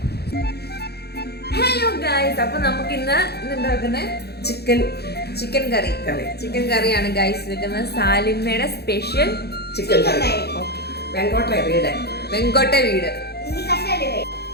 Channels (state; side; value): late; right; 0.47 ms